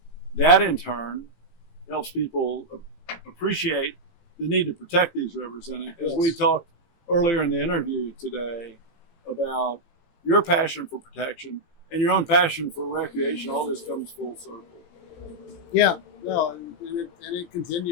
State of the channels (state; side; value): late; right; 18 ms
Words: that in turn helps people appreciate the need to protect these rivers. And as we talked earlier in the interview today about your passion for protection and your own passion for recreation, all this comes full circle. Yeah. No, and it